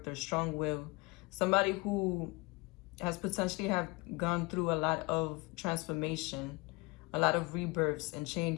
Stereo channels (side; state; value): right; quieter; 26.2 dB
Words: strong will. Somebody who has potentially have gone through a lot of transformation, a lot of rebirths and